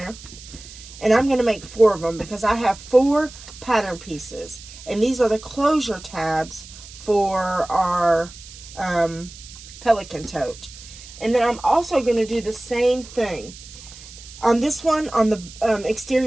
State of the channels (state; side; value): noise; right; hiss, 17 dB below the sound